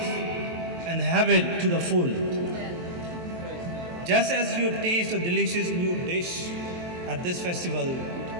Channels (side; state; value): left; late; 23 ms